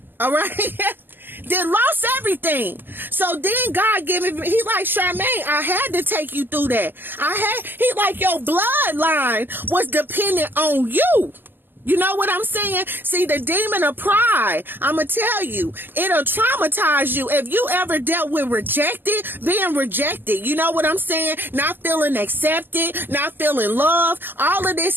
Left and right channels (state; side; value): late; left; 0.098 ms